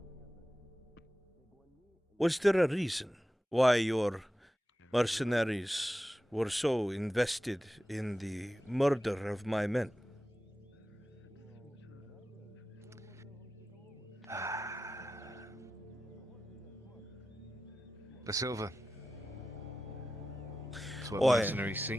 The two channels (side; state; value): both; normal; correlation 0.93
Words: Was there a reason why your mercenaries were so invested in the murder of my men? The silver. That's what mercenaries